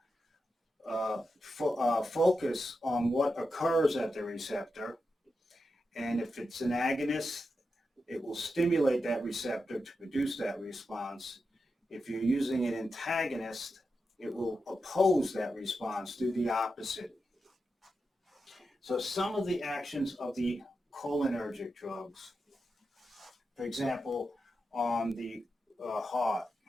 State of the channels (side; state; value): both; normal; correlation 0.88